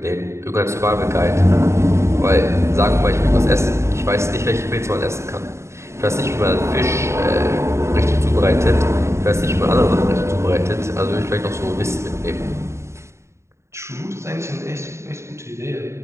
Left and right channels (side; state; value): left; late; 0.13 ms